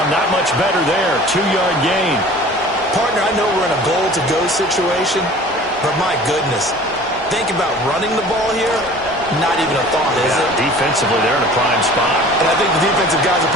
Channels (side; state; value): both; normal; correlation 0.45